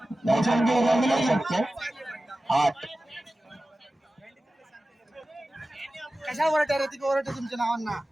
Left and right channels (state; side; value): normal; both; correlation 0.95